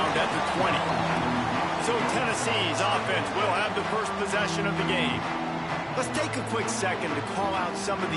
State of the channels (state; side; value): identical; both; correlation 1.00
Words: at the 20. So Tennessee's offense will have the first possession of the game. Let's take a quick second to call out some of